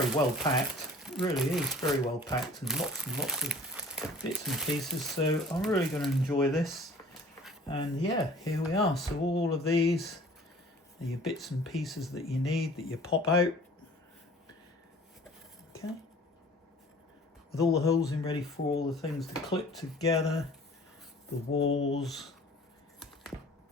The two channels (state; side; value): normal; both; correlation 0.49